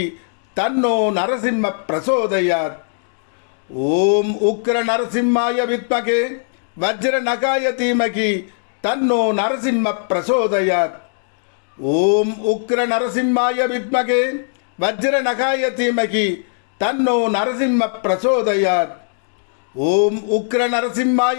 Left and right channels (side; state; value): right; silent; digital silence